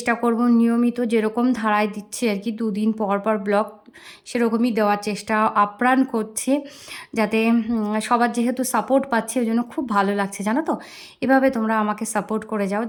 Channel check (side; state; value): both; identical; correlation 1.00